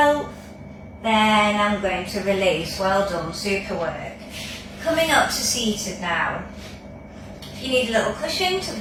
then I'm going to release. Well done, super work. Coming up to seated now. If you need a little cushion,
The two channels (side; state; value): both; identical; correlation 1.00